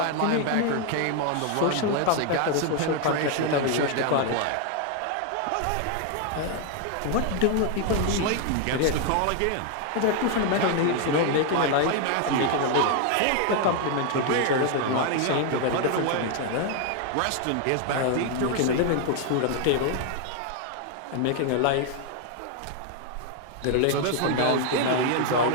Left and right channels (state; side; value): different; both; correlation 0.00